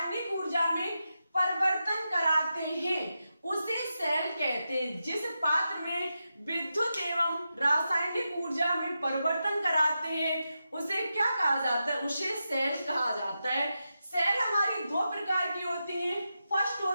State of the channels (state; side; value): inverted; both; correlation -0.89